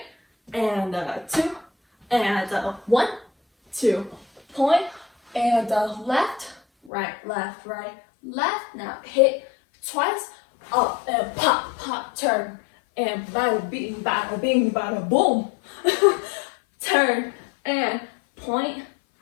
and 2, and 1, 2, point, and left, right, left, right, left. Now hit twice, up and pop, pop, turn, and bada bing, bada boom. Turn and point,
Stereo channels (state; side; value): drops out; right; at 6.9 s